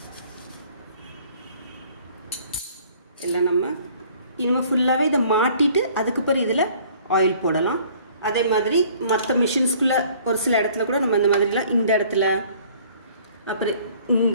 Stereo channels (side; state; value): both; inverted; correlation -0.55